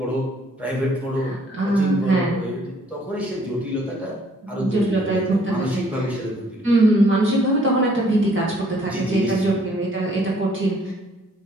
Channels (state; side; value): normal; both; correlation 0.62